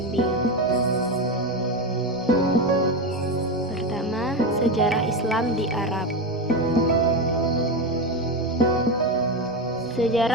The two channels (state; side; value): normal; both; correlation 0.15